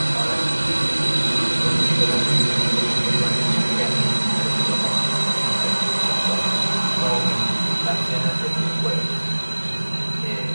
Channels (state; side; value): inverted; both; correlation -1.00